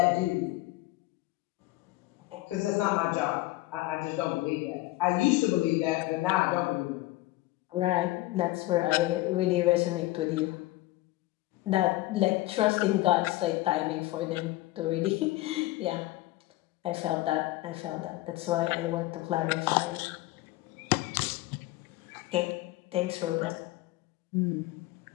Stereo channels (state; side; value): quieter; right; 18.3 dB